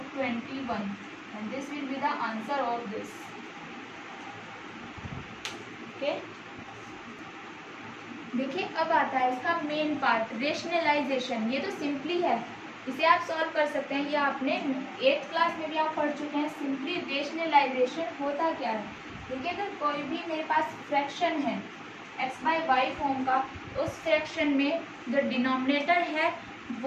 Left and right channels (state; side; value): identical; both; correlation 1.00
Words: 21 and this will be the answer of this. Okay, देखिए अब आता है इसका मेन पार्ट, रेशनलाइजेशन। ये तो सिंपली है, इसे आप सॉल्व कर सकते हैं। ये आपने 8th क्लास में भी आप पढ़ चुके हैं। सिंपली रेशनलाइजेशन होता क्या है, देखिए अगर कोई भी मेरे पास फ्रैक्शन है x/y फॉर्म का, उस फ्रैक्शन में जो डिनोमिनेटर है